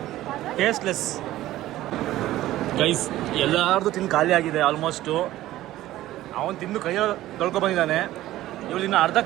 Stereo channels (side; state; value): left; quieter; 15.1 dB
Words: Tasteless guys. ಎಲ್ಲಾರ್ದು ತಿಂದು ಖಾಲಿ ಆಗಿದೆ ಆಲ್ಮೋಸ್ಟು. ಅವನು ತಿಂದು ಕೈಯಲ್ಲಿ ತೊಳ್ಕೊಬಂದಿದ್ದಾನೆ. ಇವ್ರು ಇನ್ನು ಅರ್ಧ